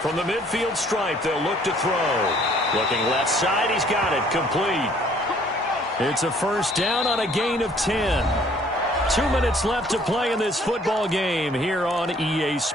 From the midfield stripe, they'll look to throw. Looking left side, he's got it, complete. It's a first down on a gain of 10. 2 minutes left to play in this football game here on EA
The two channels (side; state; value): both; normal; correlation 0.59